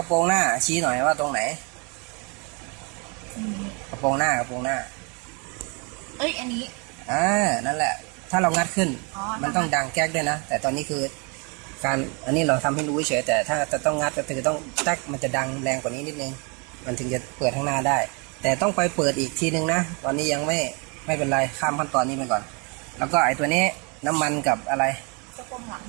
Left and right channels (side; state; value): left; quieter; 32.5 dB